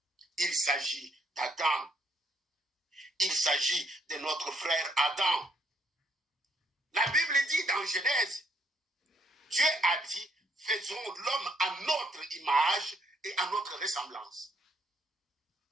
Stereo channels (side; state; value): both; normal; correlation 0.71